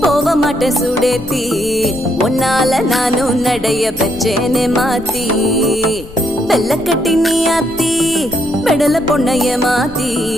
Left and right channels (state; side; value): noise; left; rumble, 17 dB below the sound